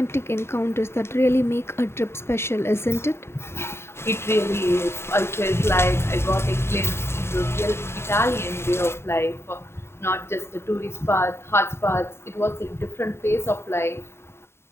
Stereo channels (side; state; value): right; late; 0.12 ms